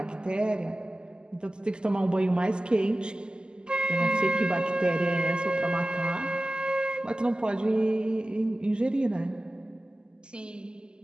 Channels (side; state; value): left; late; 0.047 ms